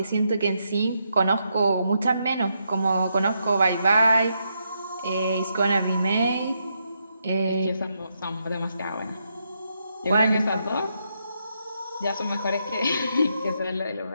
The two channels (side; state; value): both; inverted; correlation -0.80